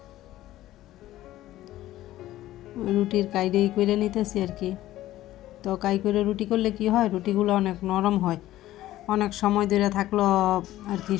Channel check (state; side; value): quieter; right; 14.7 dB